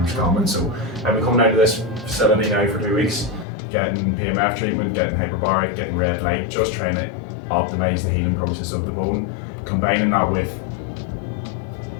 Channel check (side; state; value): right; drops out; at 3.5 s